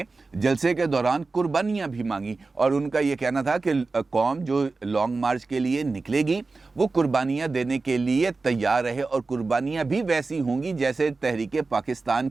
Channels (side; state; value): left; quieter; 3.8 dB